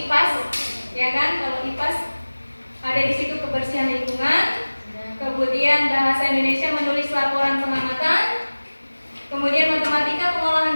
ya kan? Kalau IPAS ada di situ kebersihan lingkungan. Kemudian bahasa Indonesia menulis laporan pengamatan. Kemudian matematika pengolahan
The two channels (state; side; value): inverted; both; correlation -1.00